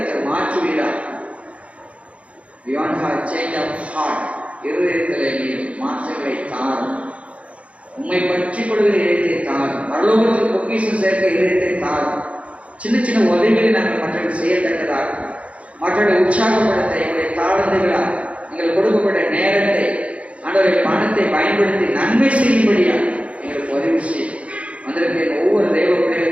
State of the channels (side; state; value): left; late; 0.063 ms